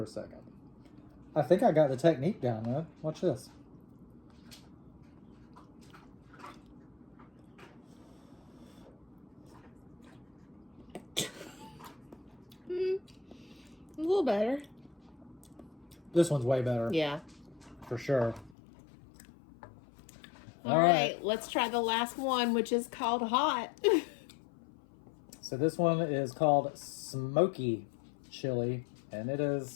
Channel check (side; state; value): right; drops out; at 18.6 s